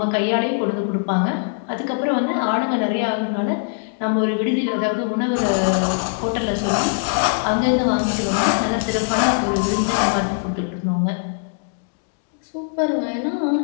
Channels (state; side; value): silent; right; digital silence